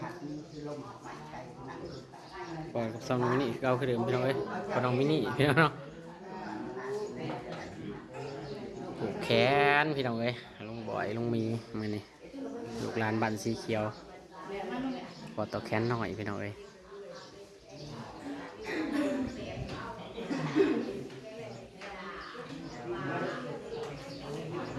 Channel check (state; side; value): identical; both; correlation 1.00